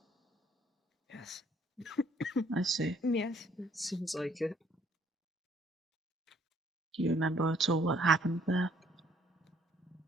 Yes. I see. Yes. It seems like it. Do you remember at all what happened there?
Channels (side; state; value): both; normal; correlation 0.64